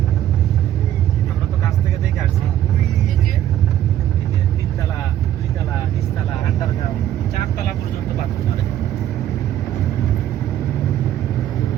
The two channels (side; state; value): left; quieter; 11.8 dB